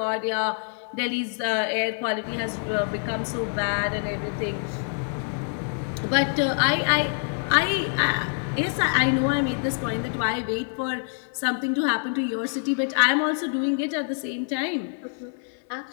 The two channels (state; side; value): silent; right; 57 dB below the other